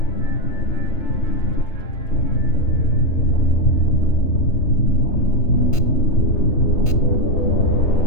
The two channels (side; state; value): right; late; 3.3 ms